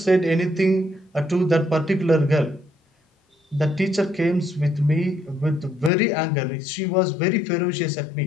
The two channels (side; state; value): right; drops out; at 5.9 s